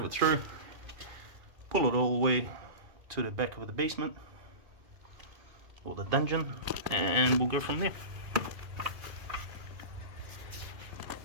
it through, pull it all the way to the back of the basement or the dungeon, and we'll go from there.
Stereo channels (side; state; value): left; late; 2.5 ms